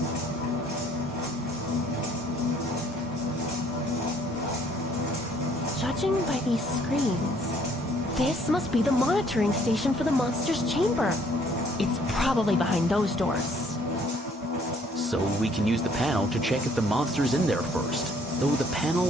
Judging by these screens, this must be the monitoring station for the monster's chamber. It's probably behind those doors. So we can use the panel to check if the monster's in there first, though the panel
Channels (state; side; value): normal; both; correlation 0.62